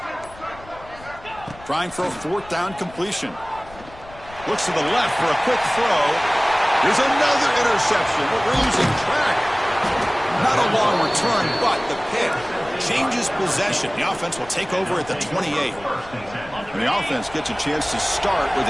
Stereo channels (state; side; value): noise; left; rumble, 20 dB below the sound